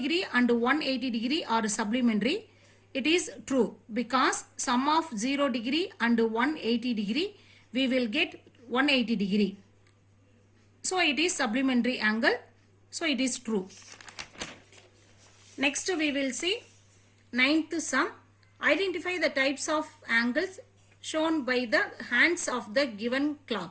and 180 degree are supplementary. It is true, because sum of 0 degree and 180 degree, we will get 180 degree. So it is supplementary angle. So it is true. Next we will see ninth sum. Identify the types of angles shown by the hands of the given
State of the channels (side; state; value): both; identical; correlation 1.00